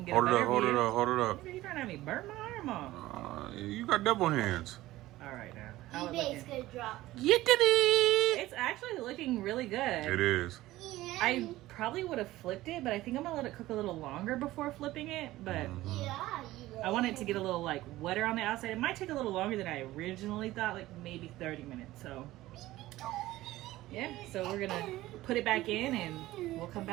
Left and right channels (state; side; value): quieter; left; 16.6 dB